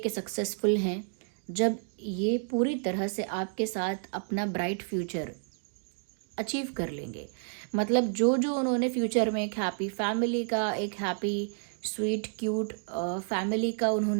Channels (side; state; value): left; silent; digital silence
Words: सक्सेसफुल हैं, जब ये पूरी तरह से आपके साथ अपना ब्राइट फ्यूचर अचीव कर लेंगे। मतलब जो जो उन्होंने फ्यूचर में एक हैप्पी फैमिली का, एक हैप्पी स्वीट क्यूट फैमिली का